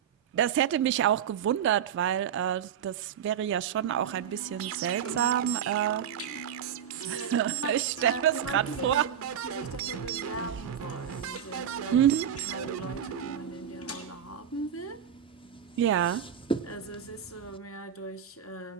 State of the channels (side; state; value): left; quieter; 9.0 dB